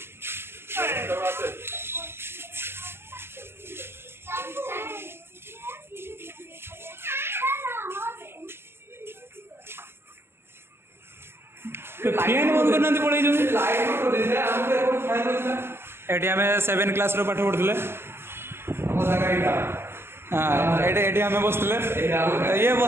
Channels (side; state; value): left; late; 0.11 ms